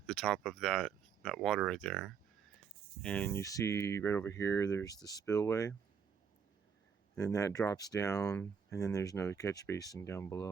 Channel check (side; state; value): left; quieter; 6.7 dB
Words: the top of that water right there, and you see right over here there's the spillway, and then that drops down, and then there's another catch basin down